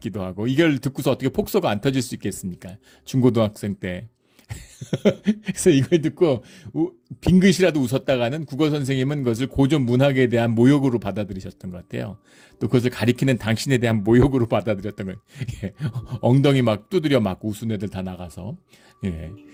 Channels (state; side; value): identical; both; correlation 1.00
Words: 하고 이걸 듣고서 어떻게 폭소가 안 터질 수 있겠습니까? 중고등학생 때. 그래서 이걸 듣고 빙긋이라도 웃었다가는 국어 선생님은 그것을 고전 문학에 대한 모욕으로 받아들이셨던 것 같아요. 또 그것을 가리키는 당신에 대한 모욕으로 받아들였던 거예요. 엉덩이 막 두드려 맞고 웃은 애들 다 나가서.